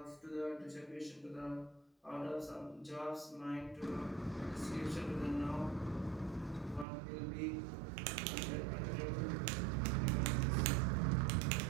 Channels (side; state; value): left; drops out; at 6.9 s